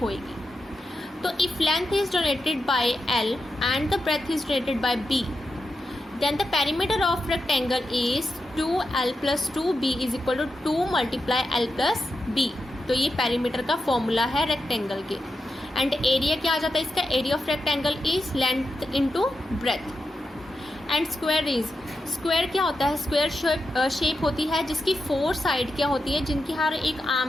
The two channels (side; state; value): both; normal; correlation 0.89